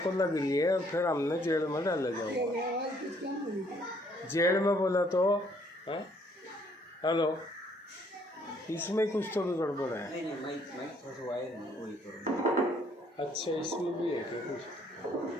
लग रही है, और फिर हमने जेल में डाला जाओगे। आवाज़ कुछ कम हो रही है। जेल में बोला तो है? हेलो, इसमें कुछ तो भी गड़बड़ है। नहीं माइक थोड़ा वायर है, वही करो। अच्छा, इसमें भी है क्या कुछ?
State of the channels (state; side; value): normal; both; correlation 0.65